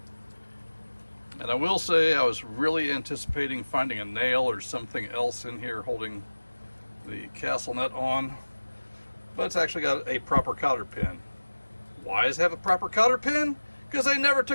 And I will say I was really anticipating finding a nail or something else in here holding the castle nut on, but it's actually got a proper cotter pin. Why does it have a proper cotter pin? Because they never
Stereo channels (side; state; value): both; inverted; correlation -1.00